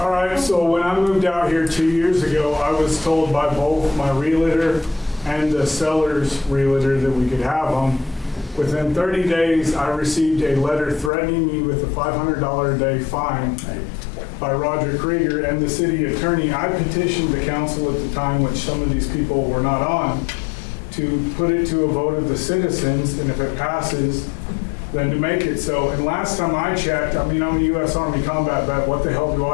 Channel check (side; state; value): right; drops out; at 11.1 s